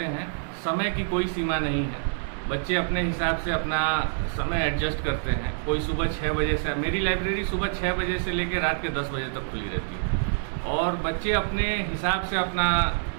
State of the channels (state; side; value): silent; left; digital silence